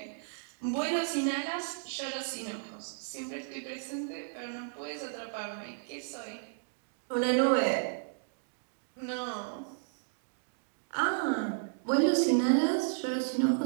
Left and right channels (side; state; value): left; silent; digital silence